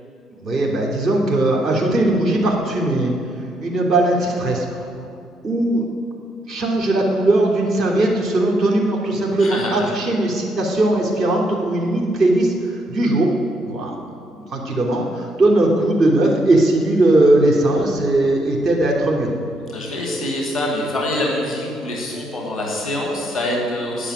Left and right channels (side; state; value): both; normal; correlation 0.76